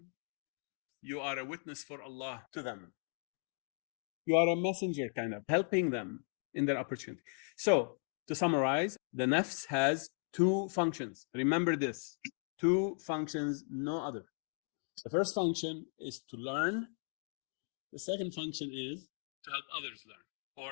you are a witness for Allah to them. You are a messenger, kind of, helping them in their opportunity. So, to summarize, the nafs has two functions. Remember this, two functions, no other. The first function is to learn. The second function is to help others learn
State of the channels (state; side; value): silent; right; 53 dB below the other